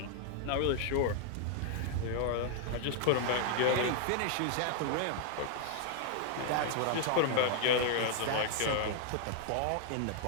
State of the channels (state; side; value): different; both; correlation 0.00